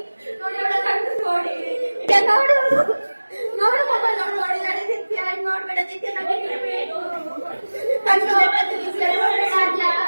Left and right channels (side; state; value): both; inverted; correlation -1.00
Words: ನೋಡಿ ಅವಳ ಕಣ್ಣು ನೋಡಿ ನೋಡು ನೋಡು ಮೊಬೈಲ್ ನೋಡಿ ನೋಡಿ ನಡೆದಿತ್ಯ ನೋಡ್ಬೇಡ ನಿತ್ಯ ನಡೀಬೇಕು ಕಣ್ಣು